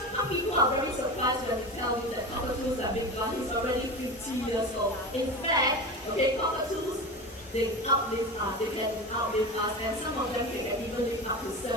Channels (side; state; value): both; normal; correlation 0.26